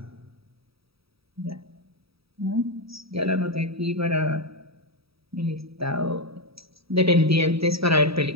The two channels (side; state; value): left; late; 0.77 ms